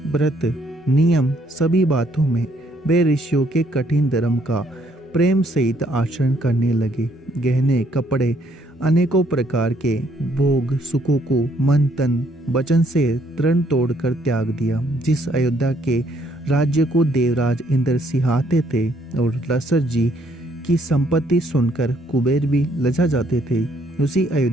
व्रत, नियम सभी बातों में वे ऋषियों के कठिन धर्म का प्रेम सहित आचरण करने लगे। गहने, कपड़े, अनेकों प्रकार के भोग सुखों को मन तन वचन से तृण तोड़कर त्याग दिया। जिस अयोध्या के राज्य को देवराज इंद्र सिहाते थे और लसर जी की संपत्ति सुनकर कुबेर भी लजा जाते थे, उसी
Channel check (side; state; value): both; normal; correlation 0.68